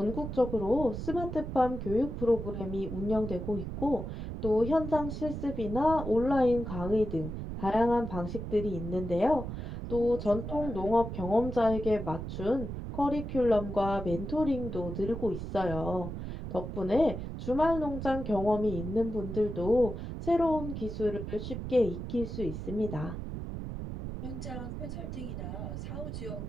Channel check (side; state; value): right; noise; rumble, 6 dB below the sound